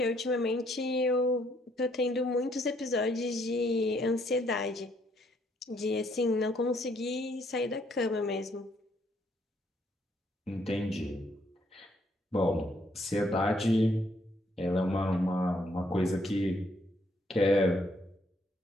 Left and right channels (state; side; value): normal; both; correlation 0.69